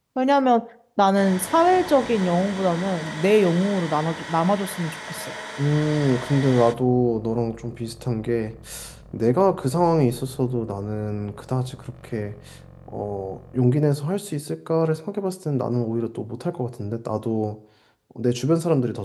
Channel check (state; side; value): identical; both; correlation 1.00